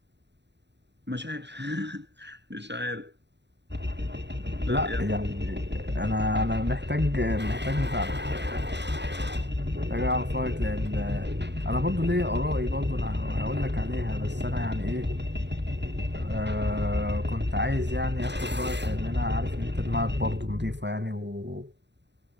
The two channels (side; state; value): left; late; 0.51 ms